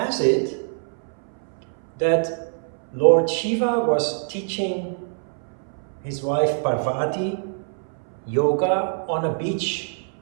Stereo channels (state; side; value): silent; left; 59 dB below the other